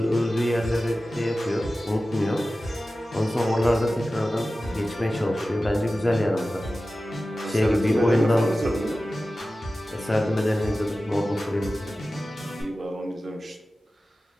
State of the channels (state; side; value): normal; both; correlation 0.95